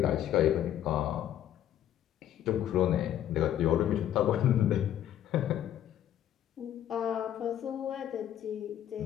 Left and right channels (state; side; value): quieter; right; 11.2 dB